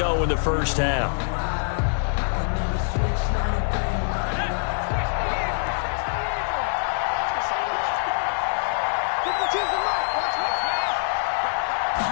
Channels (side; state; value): right; silent; digital silence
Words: in the first half.